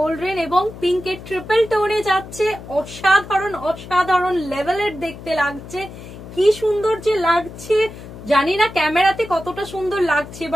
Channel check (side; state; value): left; noise; hum, 14 dB below the sound